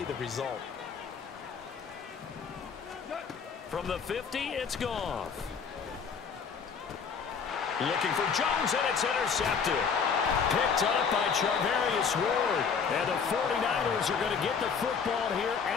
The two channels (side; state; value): right; quieter; 6.1 dB